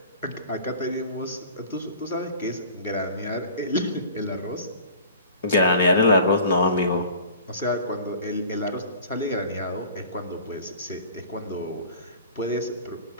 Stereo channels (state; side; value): inverted; both; correlation -0.44